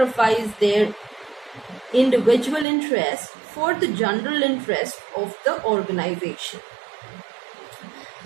their individual interest for the general interest of the organization.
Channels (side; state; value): left; drops out; at 2.7 s